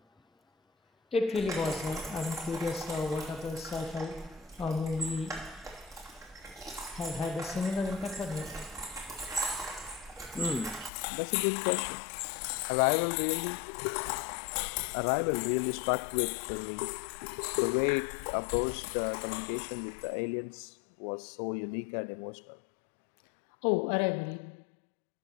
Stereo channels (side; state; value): right; drops out; at 10.9 s